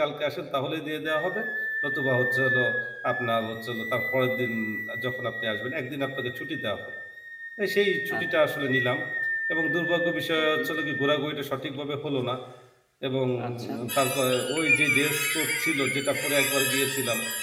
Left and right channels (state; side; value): identical; both; correlation 1.00